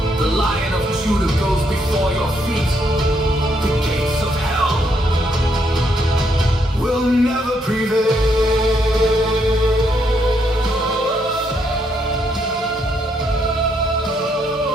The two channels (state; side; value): normal; both; correlation 0.74